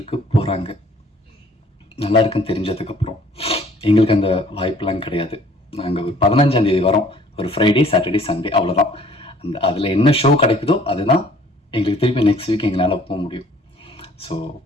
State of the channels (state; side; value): normal; both; correlation 0.56